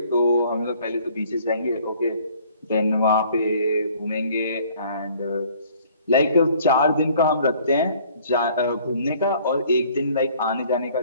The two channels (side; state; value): both; inverted; correlation -0.57